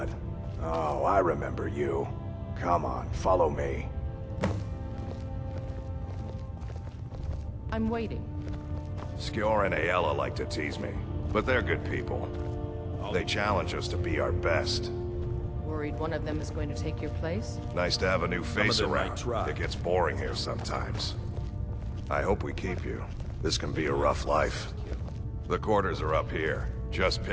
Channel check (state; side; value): identical; both; correlation 1.00